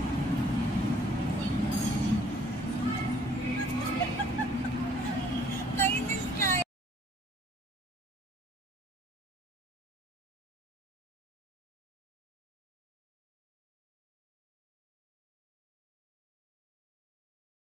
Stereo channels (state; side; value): normal; both; correlation 0.58